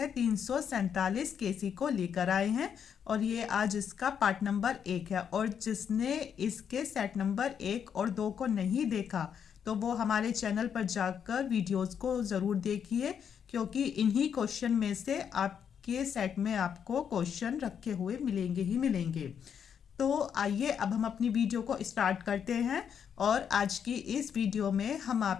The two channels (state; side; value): quieter; right; 7.8 dB